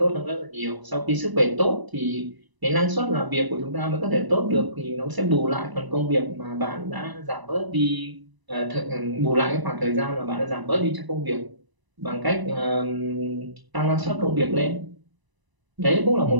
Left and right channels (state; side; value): late; left; 1.0 ms